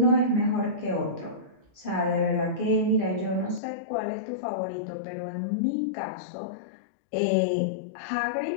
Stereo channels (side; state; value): right; drops out; at 3.6 s